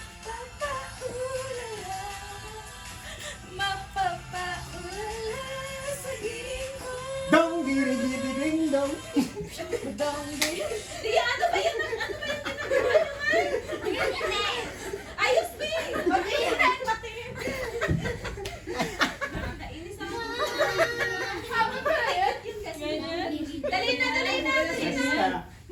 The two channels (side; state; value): both; identical; correlation 1.00